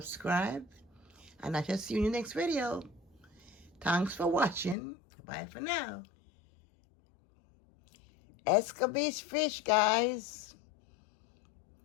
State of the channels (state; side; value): drops out; right; at 4.8 s